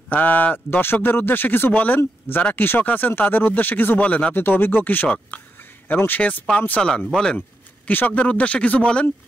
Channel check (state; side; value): normal; both; correlation 0.84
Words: দর্শকদের উদ্দেশ্যে কিছু বলেন, যারা কৃষক আছেন তাদের উদ্দেশ্যে কিছু বলেন। আপনি তো অভিজ্ঞ কৃষক এবং সেচ পাম্প চালান, বলেন কৃষকদের উদ্দেশ্যে কিছু বলেন।